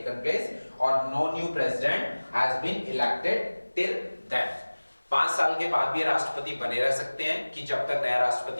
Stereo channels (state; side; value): inverted; both; correlation -1.00